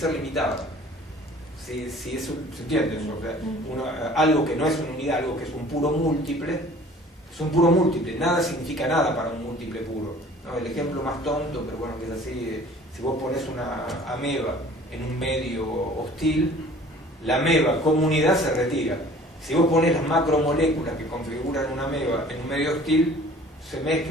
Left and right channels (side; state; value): both; normal; correlation 0.49